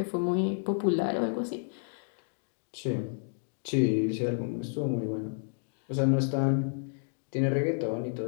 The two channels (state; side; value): silent; right; digital silence